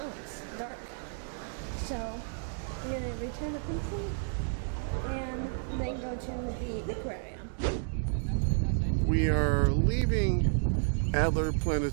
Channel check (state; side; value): silent; left; 57 dB below the other